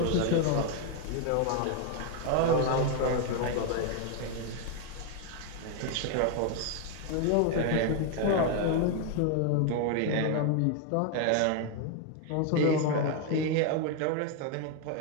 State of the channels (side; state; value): both; different; correlation 0.00